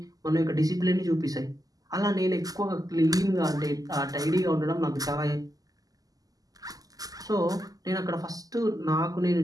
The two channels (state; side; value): late; left; 0.17 ms